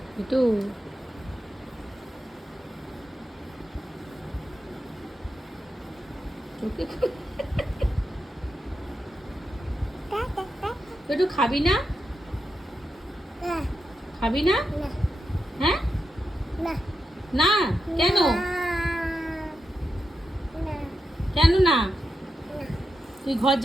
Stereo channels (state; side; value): normal; both; correlation 0.87